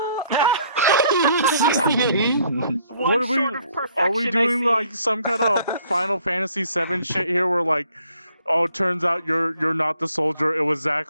What are we? Sort of Are we perfection, I doing see. like some kind of Final Fantasy VII shit here, where like, oh, it turns out you're not the soldier. It was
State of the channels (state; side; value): inverted; both; correlation -0.63